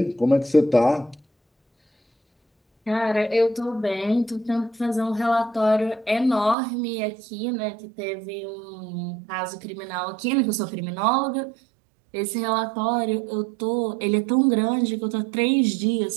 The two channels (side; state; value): left; drops out; at 6.6 s